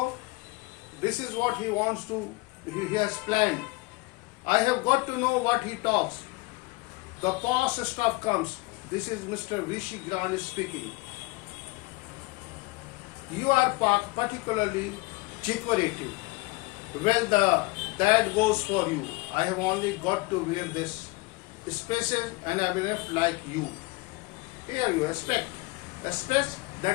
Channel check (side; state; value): right; quieter; 23.7 dB